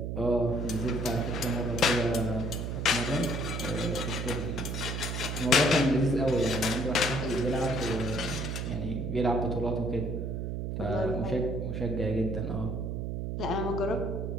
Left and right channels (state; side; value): noise; right; hum, 3 dB below the sound